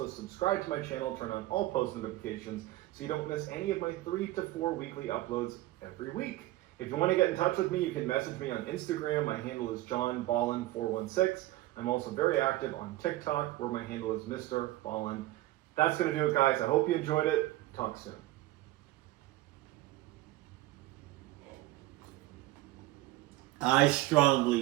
subscribe to my channel, turn on all post notifications so you don't miss any of my 3 to 4 weekly uploads every week. If you want to get in touch with me, you can message me on Instagram. My handle is johnballin416. I'm also very active on TikTok, where my handle is Mr. Ballin. That's going to do it, guys. I hope you enjoyed it. Talk soon. I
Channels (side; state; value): left; quieter; 17.1 dB